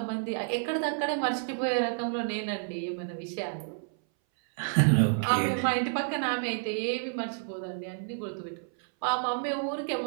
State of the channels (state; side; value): silent; left; 58 dB below the other